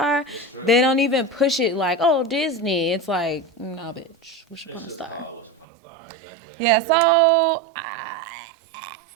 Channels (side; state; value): left; drops out; at 5.7 s